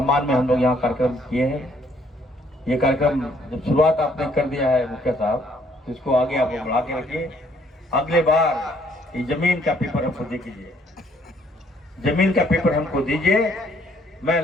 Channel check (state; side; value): normal; both; correlation 0.65